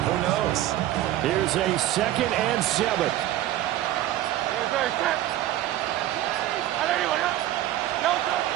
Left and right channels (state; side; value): quieter; left; 13.8 dB